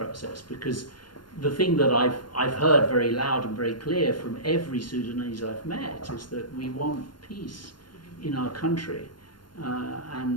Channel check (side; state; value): right; late; 0.72 ms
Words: Because the thing that I've heard very loud and very clear from every Sudanese I've met is that we want peace in our country.